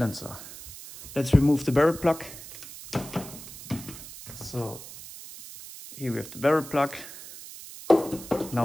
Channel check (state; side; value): noise; right; hiss, 14 dB below the sound